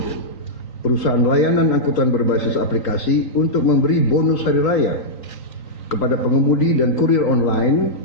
perusahaan layanan angkutan berbasis aplikasi untuk memberi bonus hari raya kepada pengemudi dan kurir online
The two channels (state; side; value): late; right; 3.9 ms